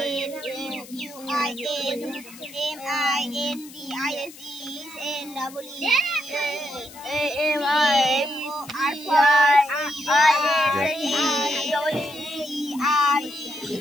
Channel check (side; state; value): left; noise; hiss, 18 dB below the sound